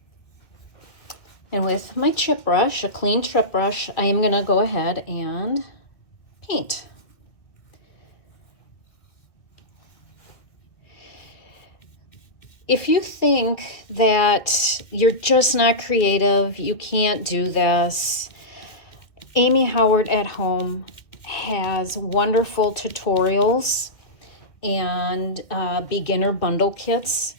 And with my chip brush, a clean chip brush, I am going to go ahead and paint. If you think that you're just not creative, you can't do this, Amy Howard at Home has wonderful tutorials and beginner bundle kits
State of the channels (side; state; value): right; late; 2.2 ms